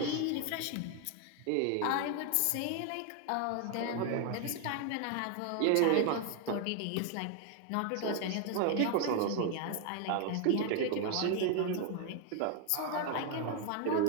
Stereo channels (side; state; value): both; different; correlation 0.01